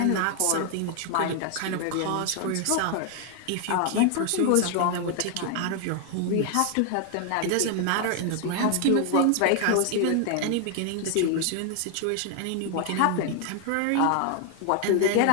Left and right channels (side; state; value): both; different; correlation 0.00